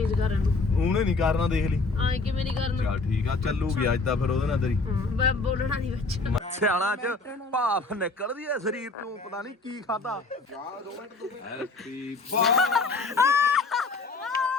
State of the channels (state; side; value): quieter; right; 3.6 dB